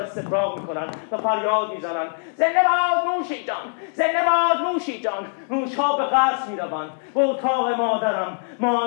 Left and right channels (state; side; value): silent; right; 64 dB below the other